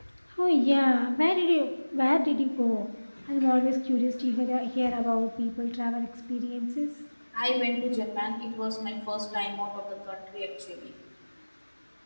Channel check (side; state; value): both; inverted; correlation -1.00